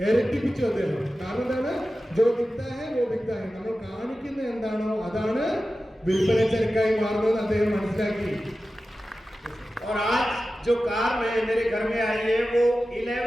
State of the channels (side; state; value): both; normal; correlation 0.94